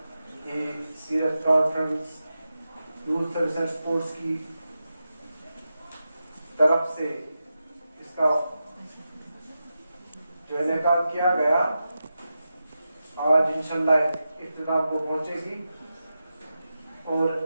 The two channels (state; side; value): inverted; both; correlation -0.90